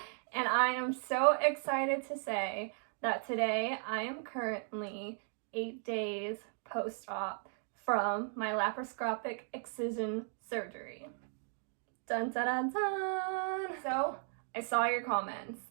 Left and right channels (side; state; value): left; silent; 54 dB below the other